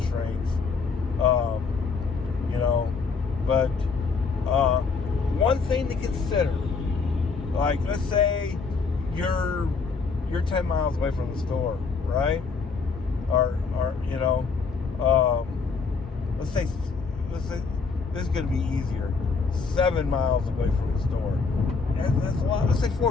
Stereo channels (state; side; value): quieter; right; 4.8 dB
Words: But one thing to consider, like, let's say you're 10 miles away from the store, right? Or let's say this is going to be easier. 7 miles away from the store. That's a lot. Let's say